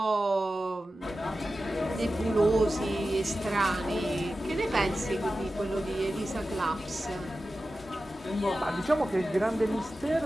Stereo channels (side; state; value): both; normal; correlation 0.93